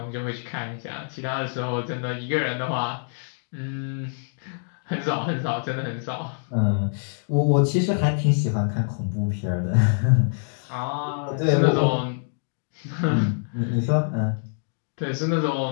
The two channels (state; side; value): silent; right; digital silence